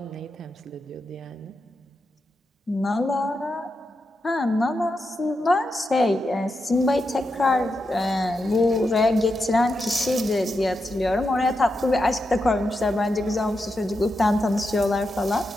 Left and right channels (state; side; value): normal; both; correlation 0.87